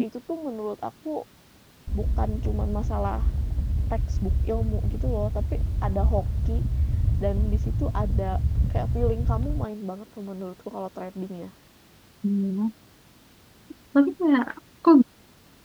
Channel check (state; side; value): identical; both; correlation 1.00